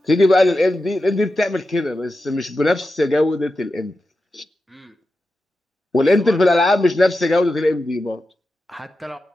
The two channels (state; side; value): normal; both; correlation 0.91